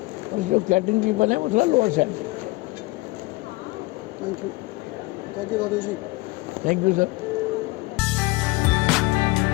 और जो कैटरिंग पीपल है वो थोड़ा लोअर साइड दिखते हैं। थैंक यू दादू जी। Thank you sir.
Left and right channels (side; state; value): right; quieter; 22.2 dB